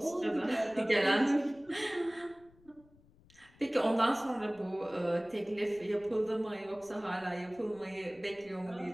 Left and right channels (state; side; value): noise; left; rumble, 28 dB below the sound